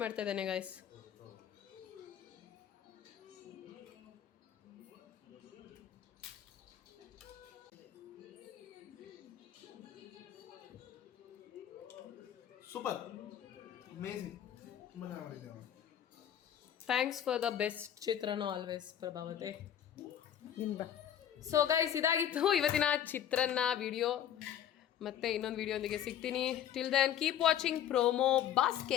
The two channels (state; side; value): quieter; right; 10.1 dB